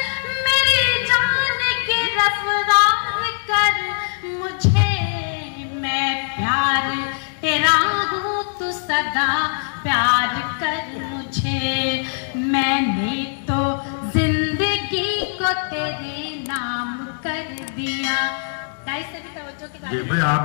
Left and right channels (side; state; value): right; silent; digital silence